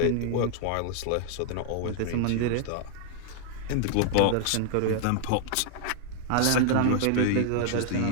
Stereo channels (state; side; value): different; both; correlation 0.00